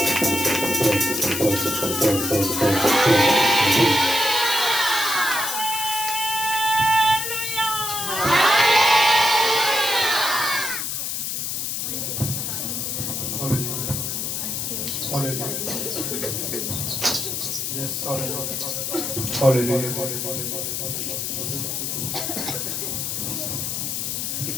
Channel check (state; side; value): noise; left; hiss, 2 dB below the sound